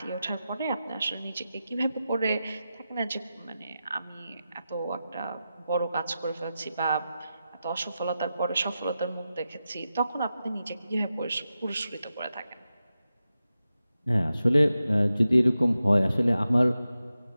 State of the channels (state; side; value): inverted; both; correlation -0.91